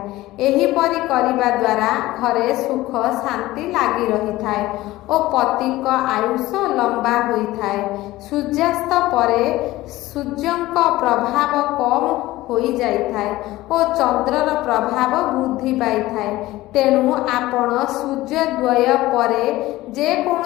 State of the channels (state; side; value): quieter; right; 17.4 dB